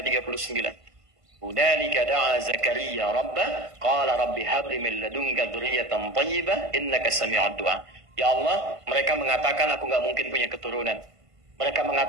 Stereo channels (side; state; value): left; late; 1.5 ms